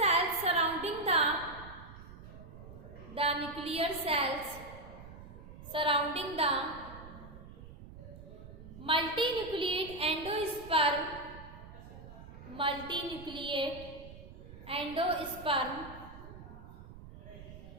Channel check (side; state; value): right; noise; rumble, 15 dB below the sound